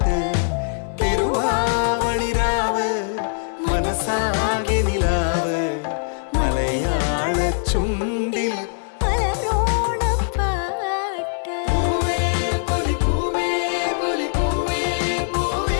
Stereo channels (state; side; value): silent; right; digital silence